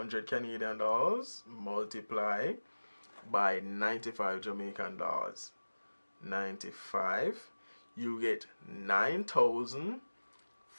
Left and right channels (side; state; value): both; inverted; correlation -1.00